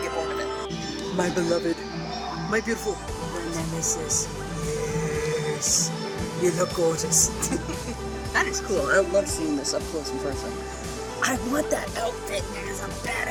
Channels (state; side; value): identical; both; correlation 1.00